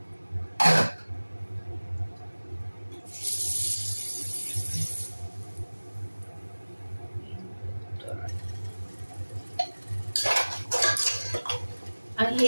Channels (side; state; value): both; inverted; correlation -1.00